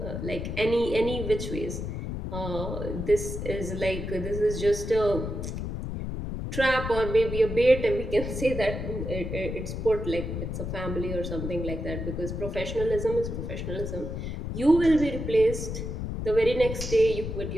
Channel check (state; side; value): noise; left; rumble, 5 dB below the sound